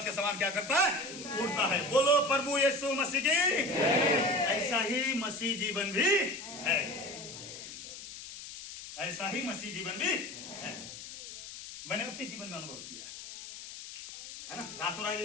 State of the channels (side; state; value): left; noise; hiss, 12 dB below the sound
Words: के समान क्या करता है? उड़ता है। बोलो प्रभु यीशु मसीह की। ऐसा ही मसीह जीवन भी है, ऐसा ही मसीह जीवन भी है। मैंने अपने जीवन में अनुभव किया है ना। रातों